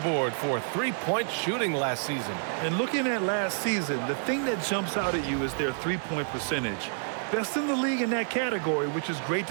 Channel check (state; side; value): silent; left; 59 dB below the other